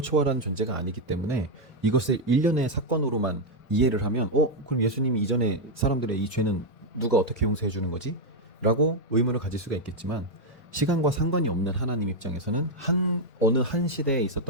초월한 존재가 아니기 때문에 이것을 일련의 사건으로만 이해를 하면 그럼 예수님이 이전에 사람들의 이 죄는 누가 어떻게 용서해 주는 거지? 라고 의문을 가질 수가 있겠지만 시간과 상관이 없는 하나님 입장에서는 어느 한 시대에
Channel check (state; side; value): normal; both; correlation 0.01